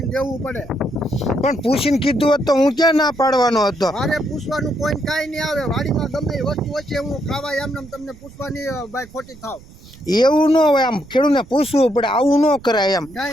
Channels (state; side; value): noise; right; rumble, 21 dB below the sound